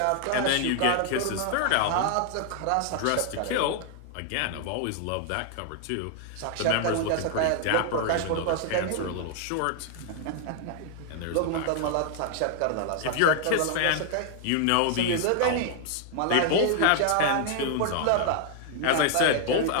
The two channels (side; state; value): both; different; correlation 0.00